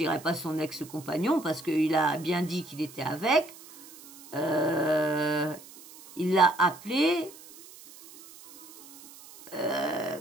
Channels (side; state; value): right; noise; hiss, 19 dB below the sound